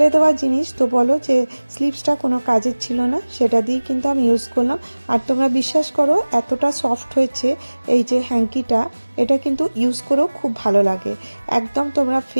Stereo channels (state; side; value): inverted; both; correlation -1.00